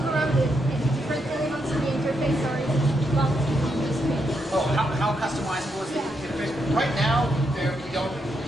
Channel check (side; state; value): both; normal; correlation 0.80